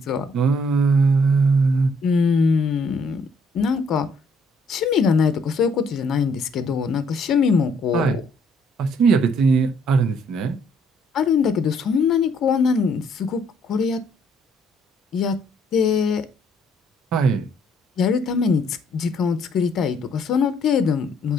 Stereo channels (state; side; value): normal; both; correlation 0.66